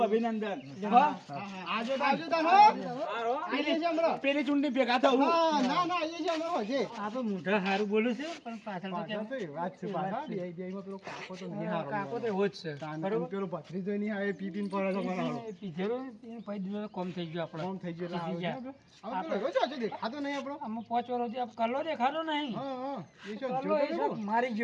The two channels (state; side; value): identical; both; correlation 1.00